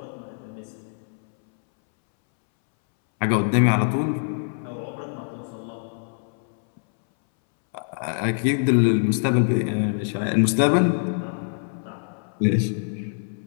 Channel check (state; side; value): silent; right; 62 dB below the other